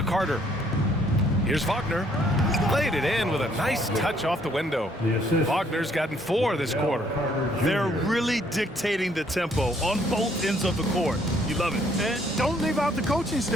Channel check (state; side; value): normal; both; correlation 0.65